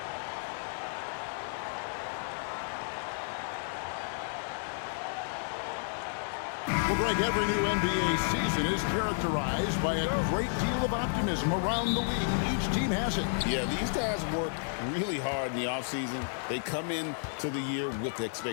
Well, Greg, every new NBA season is characterized by a great deal of optimism around the league. Each team has it. Yeah, these guys work really hard in the offseason. They come into the year with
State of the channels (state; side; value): silent; right; 55 dB below the other